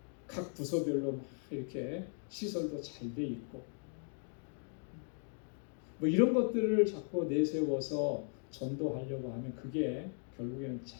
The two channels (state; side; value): silent; right; 53 dB below the other